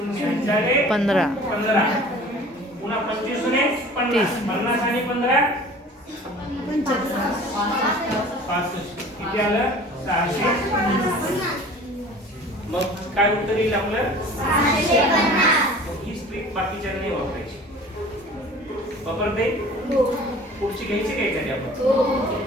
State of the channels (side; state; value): both; normal; correlation 0.45